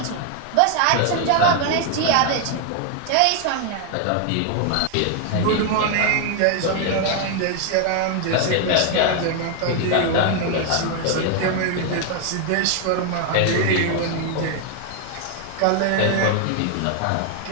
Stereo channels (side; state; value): both; different; correlation 0.00